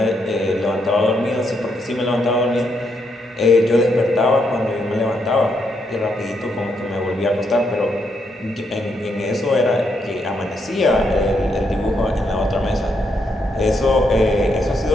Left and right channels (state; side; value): normal; both; correlation 0.78